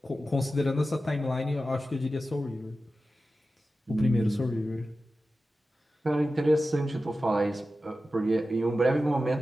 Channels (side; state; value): both; normal; correlation 0.93